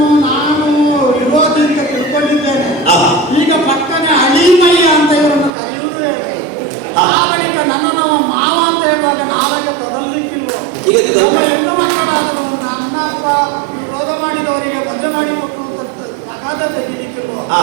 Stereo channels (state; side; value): drops out; left; at 5.5 s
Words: ನಾನು ವಿರೋಧಿ ಅಂತ ತಿಳ್ಕೊಂಡಿದ್ದೇನೆ. ಈಗ ಪಕ್ಕನೆ ಅಳಿಮಯ್ಯ ಅಂತ ಇವರನ್ನು ಕರೆಯುವುದು. ಆ ಬಳಿಕ ನನ್ನನ್ನು ಮಾವ ಅಂತ ಹೇಳುವಾಗ ನಾವಾಗ ಕೊಡಲಿಕ್ಕಿಲ್ವ? ಈಗ ಹೆಣ್ಣು ಮಕ್ಕಳಾದರೂ ನನ್ನ ವಿರೋಧ ಮಾಡಿದವರಿಗೆ ಮದುವೆ ಮಾಡಿಕೊಟ್ಟು ಅಗಾಧ ತೆಗಿಲಿಕ್ಕಿಲ್ವ?